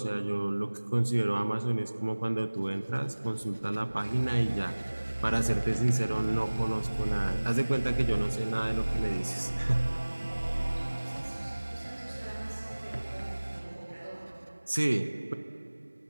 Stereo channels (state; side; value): inverted; both; correlation -1.00